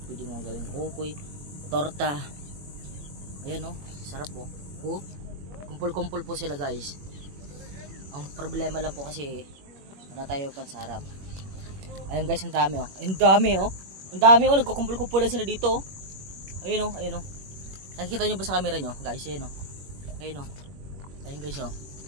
Pwede mo gawing kukoy, torta. Ayan o, sarap po. Kumpul-kumpul po sila guys. Ang problema lang po kasi wala tayo pansarap. Ayan guys, ang dami o. Ang dami o. Ang dami o, nagkukumpul-kumpul lang sila dito. Ayan o, ayan o. Nakikita nyo ba sa camera nyo? Guys, ayan o. Ayan o. Ayan guys o.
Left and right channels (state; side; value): late; left; 21 ms